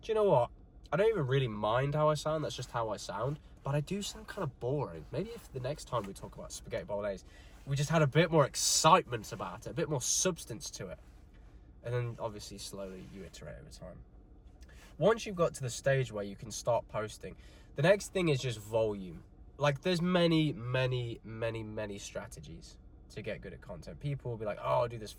you know what? I don't even really mind how I sound, that's just how I sound, but I do sound kind of boring. Maybe if the next time we talk about spaghetti bolognese, we just had a bit more excitement about it, a bit more substance to it. And then obviously slowly you iterate over time. Once you've got to the stage where you can start posting, the next thing is just volume. Like, there's many strategies to get good at content. People will be like, oh, I'll do this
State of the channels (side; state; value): both; identical; correlation 1.00